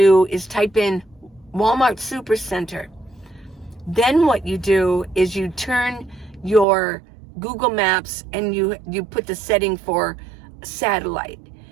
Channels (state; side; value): drops out; left; at 6.7 s